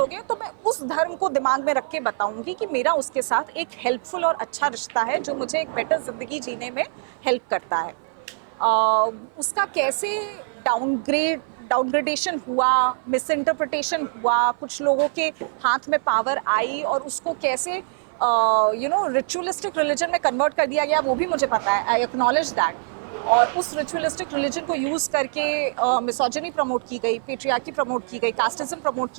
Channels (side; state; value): left; silent; 57 dB below the other